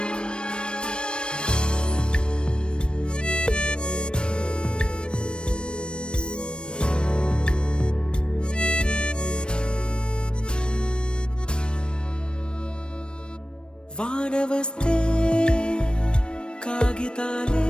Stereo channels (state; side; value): late; right; 0.054 ms